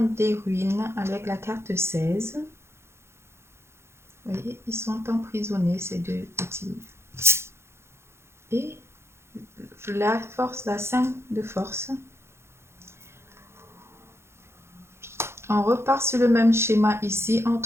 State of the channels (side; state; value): left; late; 0.12 ms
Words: ruines avec la carte 16. Vous voyez, ils sont emprisonnés, ces deux petits. Et la force, la 5 de force. On repart sur le même schéma ici